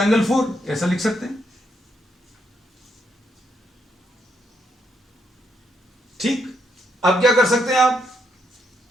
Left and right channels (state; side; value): normal; both; correlation 0.77